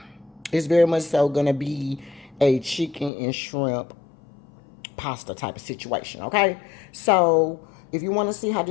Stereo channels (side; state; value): right; drops out; at 3.1 s